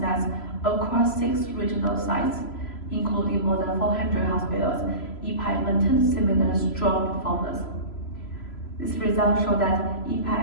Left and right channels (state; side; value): late; right; 3.0 ms